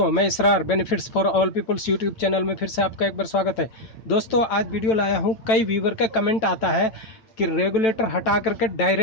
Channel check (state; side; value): late; right; 8.7 ms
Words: मैं Israr benefits for all peoples YouTube channel में फिर से आपका एक बार स्वागत है। दोस्तों आज वीडियो लाया हूँ, कई व्यूवर का कमेंट आता है कि रेगुलेटर हटा करके